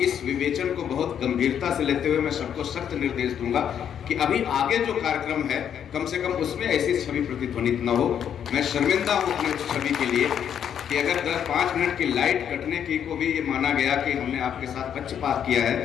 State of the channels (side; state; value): right; quieter; 8.8 dB